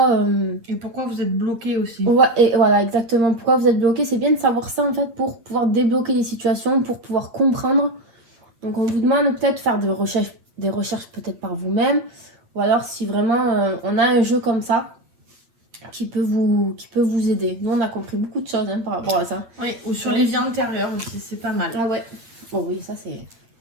Et pourquoi vous êtes bloqué aussi. Ouais, et voilà, exactement. Pourquoi vous êtes bloqué, c'est bien de savoir ça en fait pour pouvoir débloquer les situations, pour pouvoir comprendre. Donc, on vous demande peut-être de faire des recherches peut-être par vous-même, ou alors si vraiment on a un jeu comme ça qui peut vous aider. Nous, on a compris beaucoup de choses par rapport à ça. Oui, ou sur les vies antérieures aussi, c'est pas mal. Ah ouais. Bon, oui, ça c'est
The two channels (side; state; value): left; late; 8.4 ms